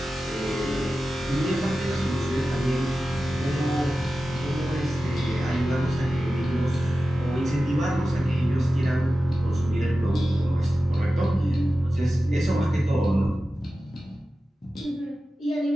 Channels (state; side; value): normal; both; correlation 0.94